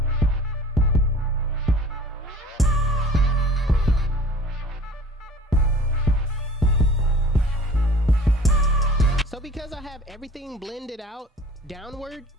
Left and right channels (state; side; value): normal; both; correlation 0.47